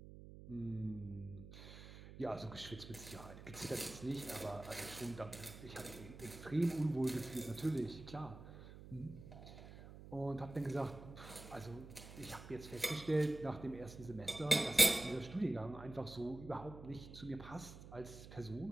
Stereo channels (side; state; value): right; noise; hum, 14 dB below the sound